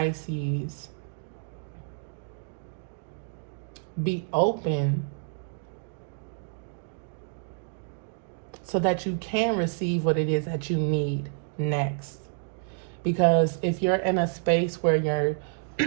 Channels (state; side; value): silent; left; digital silence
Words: be open so that you can receive what it is that you need next. Because if you're in a space where